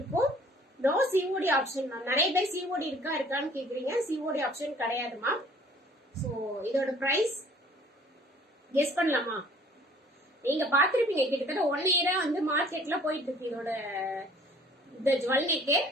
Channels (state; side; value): normal; both; correlation 0.54